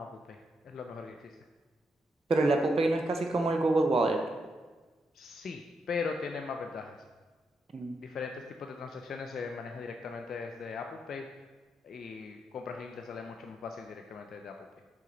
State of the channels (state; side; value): normal; both; correlation 0.82